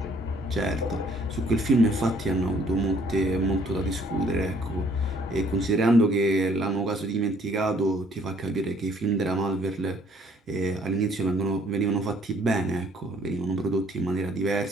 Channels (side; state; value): both; normal; correlation 0.61